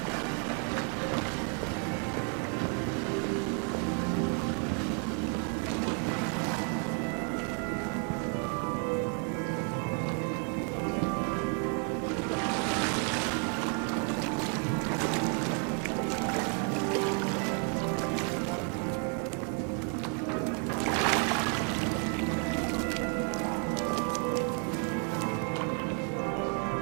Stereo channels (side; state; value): left; quieter; 38.9 dB